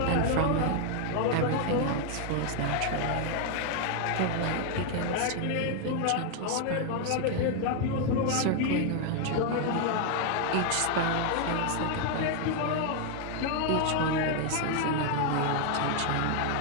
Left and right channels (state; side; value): different; both; correlation 0.00